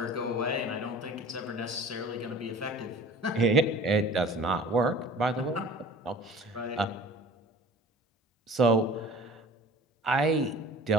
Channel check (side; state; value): both; normal; correlation 0.43